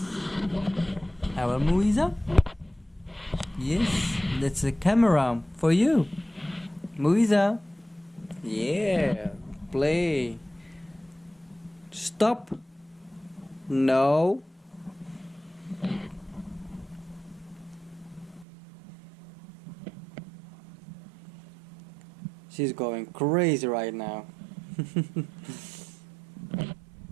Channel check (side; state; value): left; drops out; at 18.4 s